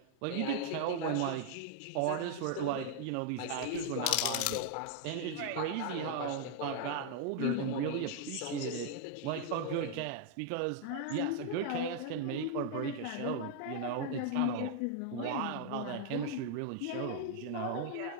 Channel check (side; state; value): both; different; correlation 0.00